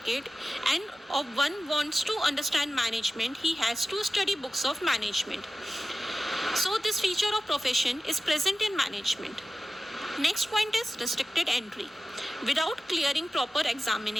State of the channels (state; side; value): normal; both; correlation 0.95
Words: and if one wants to understand management, he has to study books of management. So this feature of profession is present in management. Next point is restricted entry. Without clearing proper